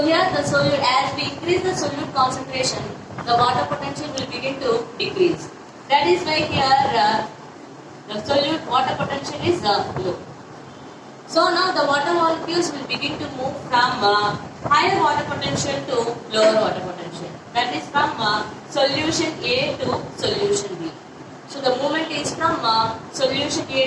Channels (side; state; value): both; identical; correlation 1.00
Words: here the solute, as we increase the solute concentration, the water potential will begin to decrease. That is why here the solute water potential is low. So now the water molecules will begin to move from higher water potential to lower water potential. That is from solution A to solution B. So the movement is from solution